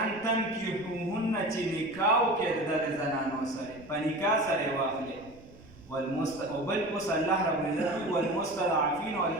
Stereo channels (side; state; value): right; noise; rumble, 23 dB below the sound